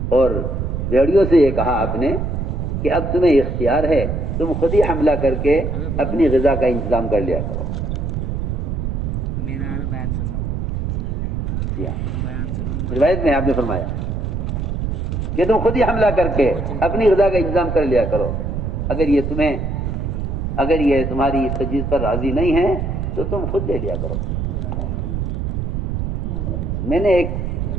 اور بھیڑیوں سے یہ کہا آپ نے کہ اب تمہیں اختیار ہے, تم خود ہی حملہ کر کے اپنی غذا کا انتظام کر لیا کرو. روایت میں آپ نے فرمایا کہ تم خود ہی حملہ کر کے اپنی غذا کا انتظام کر لیا کرو. اگر یہ تمہاری اس تجویز پر راضی نہیں ہے تو تم خود لے لیا کرو. میں نے ایک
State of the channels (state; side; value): noise; right; rumble, 2 dB below the sound